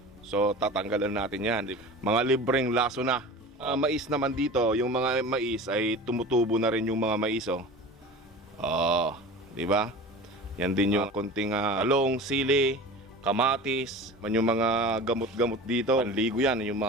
So tatanggalan natin yan. Mga libreng laso na. Mais naman dito, yung mga mais ay tumutubo na rin yung mga mais. Di ba? Yan din yung konting talong, sili, kamatis, man yung mga gamot-gamot dito. Panligo yan, yung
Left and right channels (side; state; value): both; normal; correlation 0.36